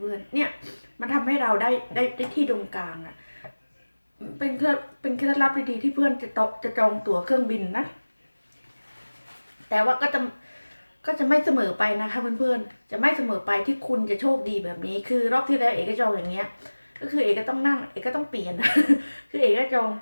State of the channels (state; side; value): inverted; both; correlation -1.00